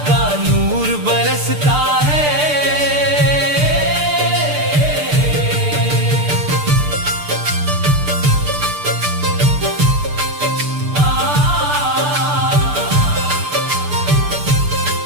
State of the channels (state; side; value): late; left; 6.7 ms